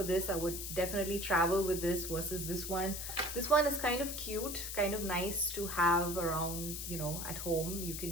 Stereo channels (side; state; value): left; noise; hiss, 5 dB below the sound